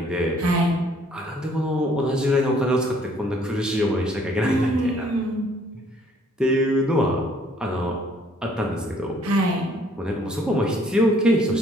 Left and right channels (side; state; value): both; normal; correlation 0.61